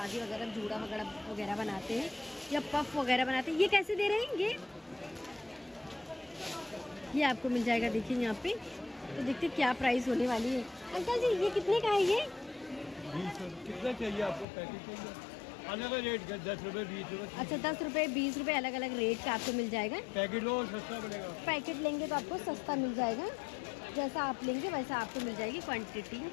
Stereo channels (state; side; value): drops out; right; at 14.5 s